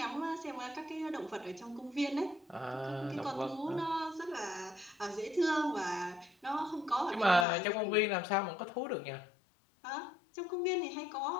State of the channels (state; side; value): drops out; right; at 7.5 s